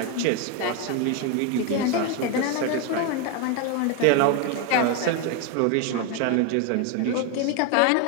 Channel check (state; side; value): different; both; correlation 0.01